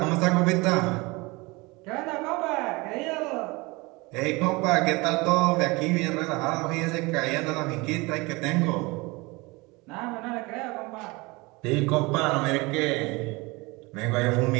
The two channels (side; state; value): left; quieter; 24.5 dB